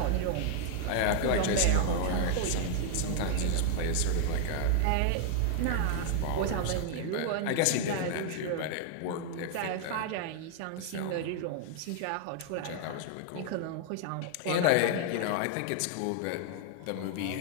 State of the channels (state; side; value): different; both; correlation 0.00